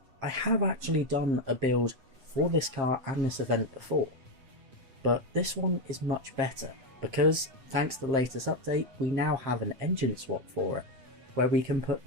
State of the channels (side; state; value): left; late; 7.6 ms